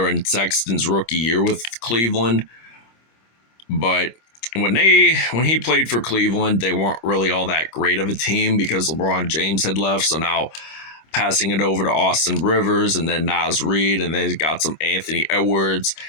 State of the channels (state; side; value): late; right; 26 ms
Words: Sexton's rookie year with Cleveland. But when he played for Cleveland, they weren't really all that great of a team because LeBron James had left. So now passing it over to Austin Rivers and then Naz Reid, and then got some Anthony Edwards.